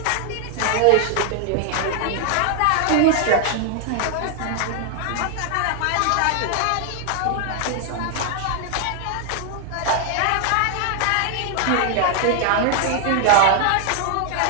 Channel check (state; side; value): different; both; correlation 0.00